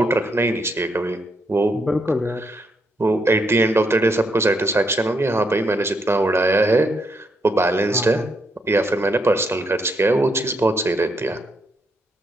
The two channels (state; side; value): normal; both; correlation 0.77